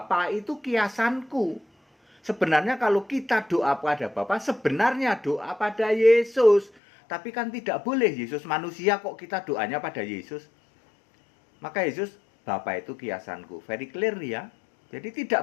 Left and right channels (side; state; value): right; drops out; at 6.7 s